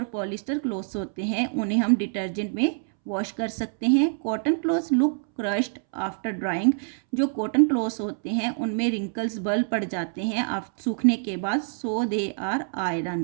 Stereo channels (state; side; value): silent; left; 61 dB below the other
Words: पॉलिस्टर क्लोथ्स होते हैं उन्हें हम डिटर्जेंट में वॉश कर सकते हैं। Cotton clothes look crushed after drawing. जो कॉटन क्लोथ्स होते हैं उनमें रिंकल्स बल पड़ जाते हैं सूखने के बाद, सो दे आर